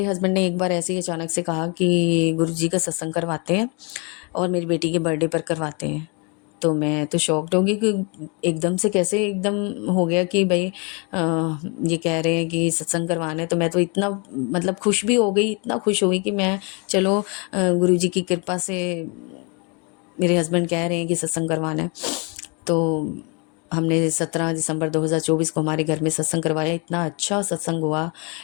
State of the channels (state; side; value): quieter; right; 32.8 dB